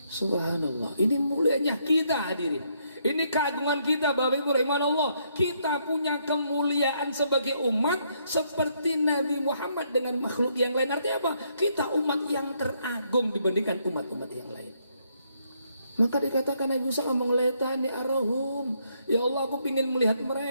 Subhanallah, ini mulianya kita hadirin. Ini keagungan kita Bapak Ibu rahimahullah. Kita punya kemuliaan sebagai umat seperti Nabi Muhammad dengan makhluk yang lain. Artinya apa? Kita umat yang teragung dibandingkan umat-umat yang lain. Maka dikatakan Nabi Musa ngomong letani arahum, ya Allah aku ingin melihat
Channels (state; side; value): inverted; both; correlation -0.73